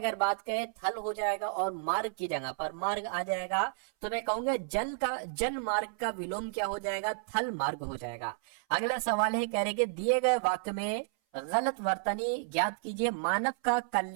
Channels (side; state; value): left; silent; 57 dB below the other